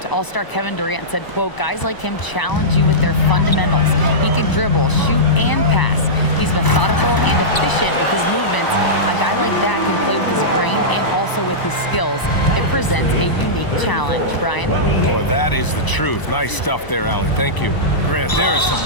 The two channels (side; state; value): right; late; 1.0 ms